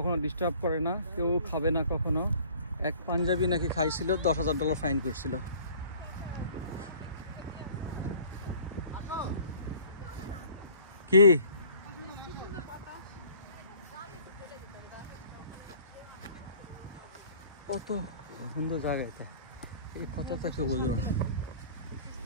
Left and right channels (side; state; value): both; inverted; correlation -0.51